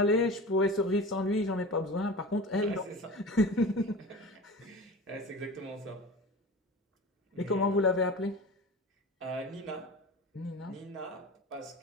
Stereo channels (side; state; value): both; normal; correlation 0.34